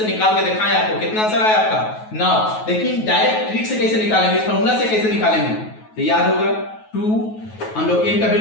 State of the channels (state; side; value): late; right; 9.3 ms